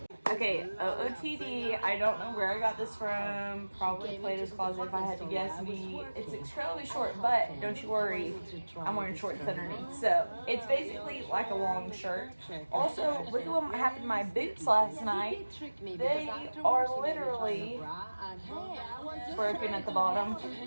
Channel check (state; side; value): inverted; both; correlation -1.00